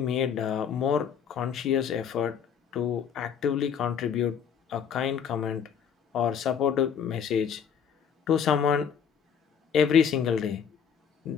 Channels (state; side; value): quieter; right; 7.6 dB